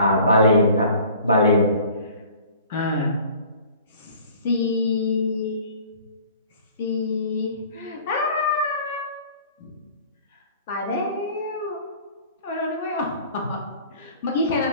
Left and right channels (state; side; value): inverted; both; correlation -0.48